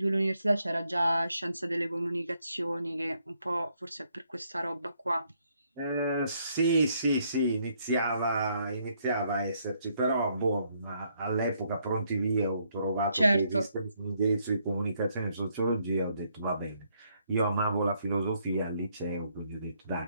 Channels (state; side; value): inverted; both; correlation -0.73